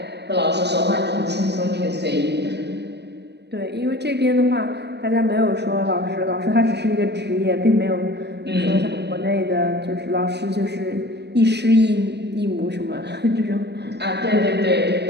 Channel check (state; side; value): late; left; 0.49 ms